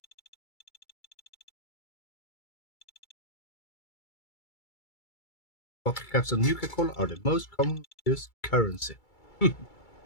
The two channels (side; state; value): right; late; 2.3 ms